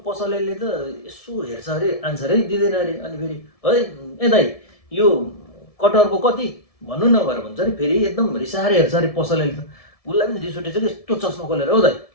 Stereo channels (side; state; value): right; late; 1.7 ms